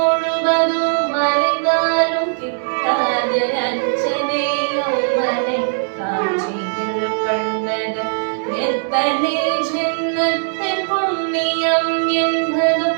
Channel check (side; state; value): left; silent; 63 dB below the other